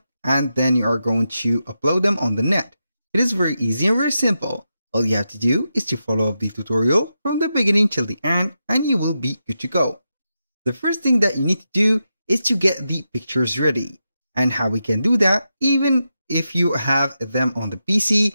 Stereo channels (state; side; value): inverted; both; correlation -0.88